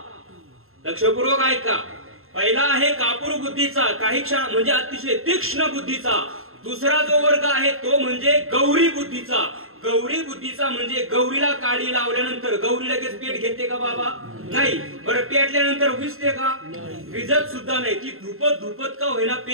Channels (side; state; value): left; late; 0.61 ms